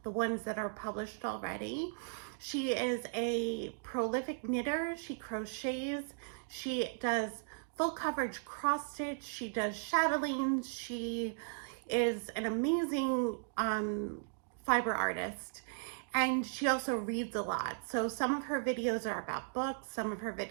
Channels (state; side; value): silent; left; digital silence